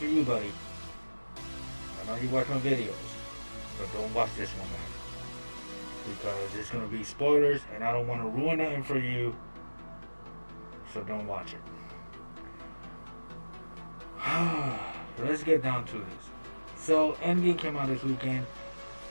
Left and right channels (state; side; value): inverted; both; correlation -1.00